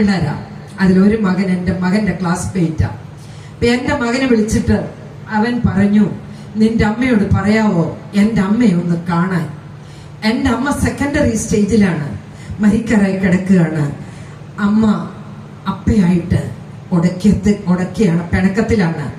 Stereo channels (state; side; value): identical; both; correlation 1.00